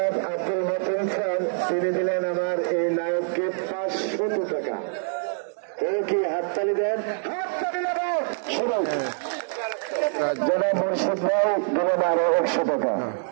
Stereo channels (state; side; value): silent; left; digital silence